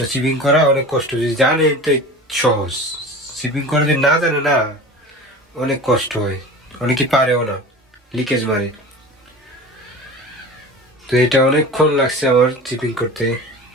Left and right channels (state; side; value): normal; both; correlation 0.36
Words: চিপিং করা, অনেক কষ্ট। যদি জানে তো সহজ, চিপিং করা যদি না জানে না অনেক কষ্ট হয়, অনেকে পারেও না, লিকেজ মারে। তো এটা অনেকক্ষণ লাগছে আমার চিপিং করতে,